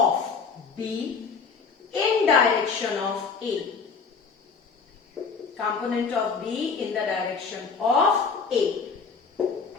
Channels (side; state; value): right; quieter; 5.2 dB